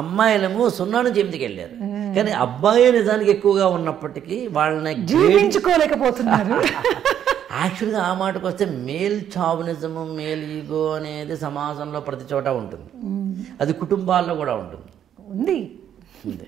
0 నుంచి 8కి వెళ్ళారు. కానీ అబ్బాయి నిజానికి ఎక్కువగా ఉన్నప్పటికీ వాళ్ళని జీవించుకోలేకపోతున్నారు. యాక్చువల్గా ఆ మాటకు వస్తే మేల్ చావనిజము, మేల్ ఈగో అనేది సమాజంలో ప్రతి చోట ఉంటుంది, అది కుటుంబాల్లో కూడా ఉంటుంది.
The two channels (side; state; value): left; quieter; 9.8 dB